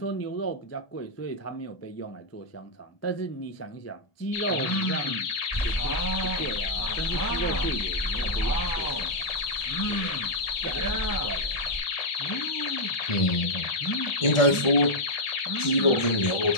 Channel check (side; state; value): right; late; 1.4 ms